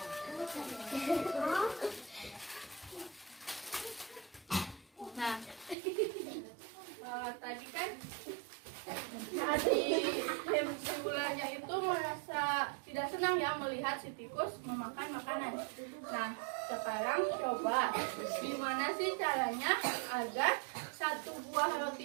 Nah, tadi kan si ularnya itu merasa tidak senang ya melihat si tikus memakan makanan. Nah, sekarang coba gimana sih caranya agar satu buah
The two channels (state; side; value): drops out; left; at 5.8 s